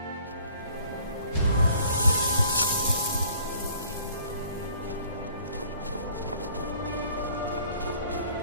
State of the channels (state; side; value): inverted; both; correlation -0.54